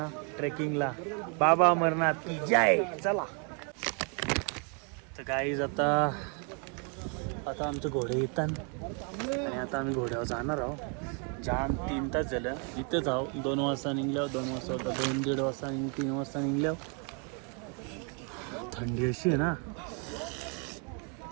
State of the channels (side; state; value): left; quieter; 37.8 dB